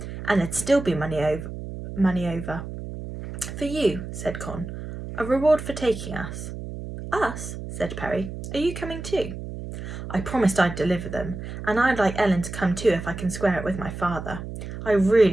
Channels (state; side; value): noise; right; hum, 9 dB below the sound